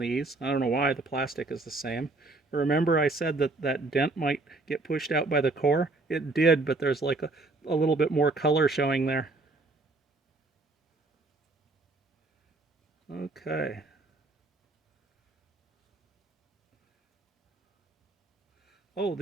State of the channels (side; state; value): left; quieter; 3.3 dB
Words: I don't know why, the plastic is the same. Remember I said that that dent might get pushed out by the core? It did, but there's like a little bit more color showing there. Okay. Oh,